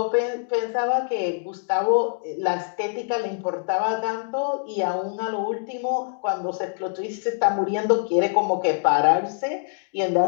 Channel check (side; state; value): right; silent; digital silence